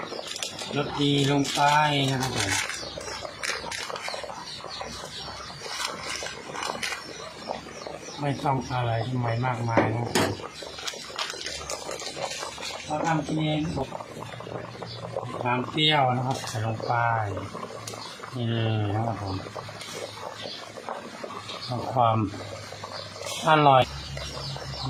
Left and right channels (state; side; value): identical; both; correlation 1.00